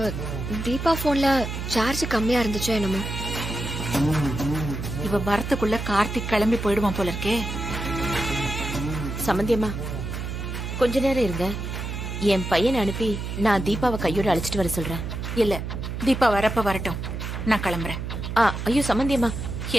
தீபா போன்ல சார்ஜ் கம்மியா இருந்துச்சோ என்னமோ. இவ வரத்துக்குள்ள கார்த்திக் கிளம்பி போயிடுவான் போல இருக்கே. சம்பந்தியம்மா கொஞ்ச நேரம் இருங்க. என் பையனை அனுப்பி நான் தீபாவை கையோட அழைச்சிட்டு வர சொல்றேன். இல்ல, தீபா வரப்ப வரட்டும், நான் கிளம்புறேன். ஐயோ சம்பந்தியம்மா,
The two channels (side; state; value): right; noise; hum, 5 dB below the sound